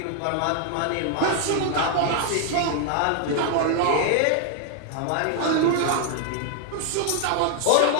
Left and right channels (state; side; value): different; both; correlation 0.00